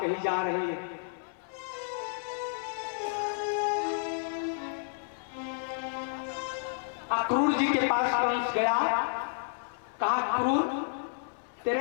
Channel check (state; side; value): silent; right; 55 dB below the other